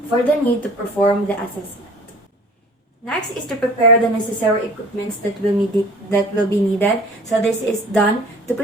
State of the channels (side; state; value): both; normal; correlation 0.47